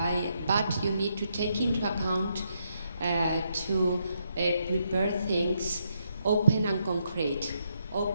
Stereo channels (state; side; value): inverted; both; correlation -0.78